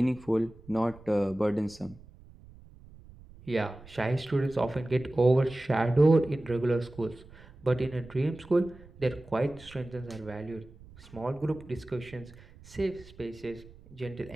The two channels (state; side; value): noise; right; rumble, 21 dB below the sound